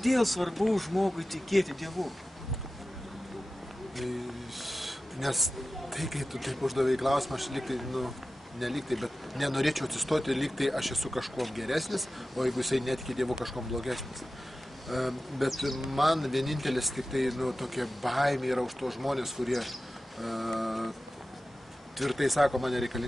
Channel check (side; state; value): both; normal; correlation 0.95